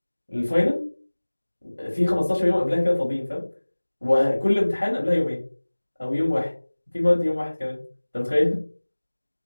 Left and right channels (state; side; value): inverted; both; correlation -1.00